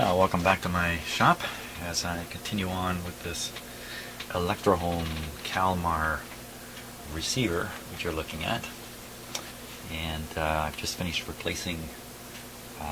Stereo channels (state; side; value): identical; both; correlation 1.00